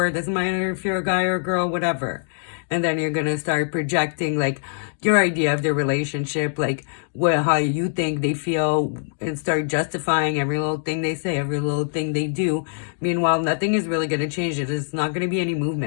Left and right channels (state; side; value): silent; right; digital silence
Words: Doesn't matter if you're a guy or a girl, whatever. And then you're gonna start projecting like your idea of the relationship, like how you think they feel, and start justifying every little thing they say, every little thing they do. Meanwhile, nothing is really gonna change it. It's not gonna be any